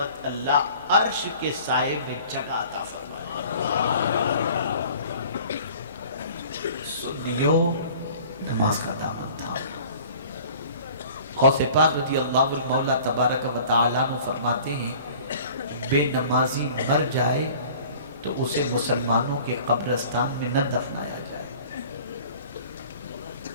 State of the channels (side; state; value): both; inverted; correlation -0.47